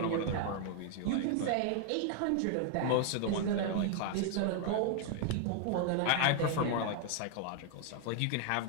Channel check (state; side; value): different; both; correlation 0.00